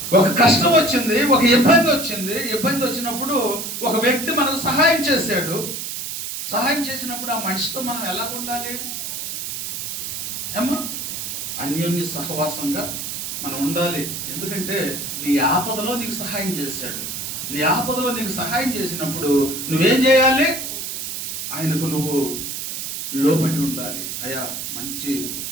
ఒక కష్టం వచ్చింది, ఒక ఇబ్బంది వచ్చింది. ఇబ్బంది వచ్చినప్పుడు ఒక వ్యక్తి మనకు సహాయం చేశాడు. సహాయం చేసినప్పుడు ఆ మనిషితో మనం ఎలా ఉండాలి? ఏమో అన్యోన్య సహవాసంగా మనం ఉండాలి. ఎందుకంటే నీ ఆపదలో నీకు సహాయం చేశాడు. నీ ఆపదలో నీకు సహాయం చేసినప్పుడు నువ్వేం చేయాలి? ఆయనకు నువ్వు లోబడి ఉండాలి. అయ్యా, మంచి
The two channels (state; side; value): noise; right; hiss, 5 dB below the sound